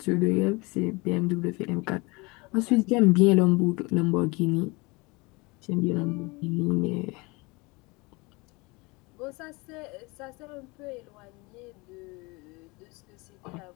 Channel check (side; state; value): right; quieter; 25.8 dB